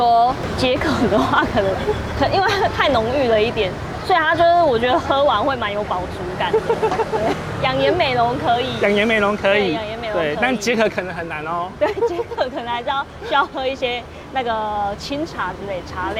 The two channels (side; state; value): both; identical; correlation 1.00